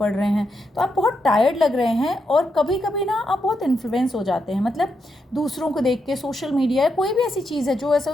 रहे हैं, तो आप बहुत टायर्ड लग रहे हैं। और कभी कभी ना आप बहुत इन्फ्लुएंस हो जाते हैं, मतलब दूसरों को देख के, सोशल मीडिया या कोई भी ऐसी चीज़ है जो ऐसा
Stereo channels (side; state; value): both; normal; correlation 0.82